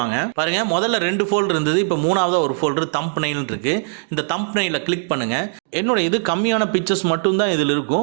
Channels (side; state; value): left; silent; digital silence